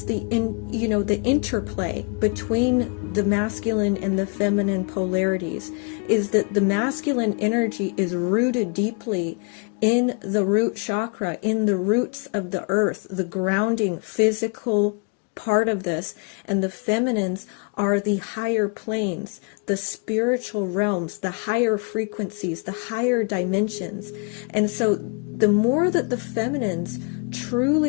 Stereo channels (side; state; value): right; quieter; 33.3 dB